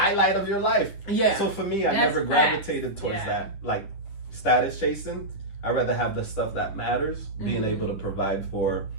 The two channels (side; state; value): right; late; 10 ms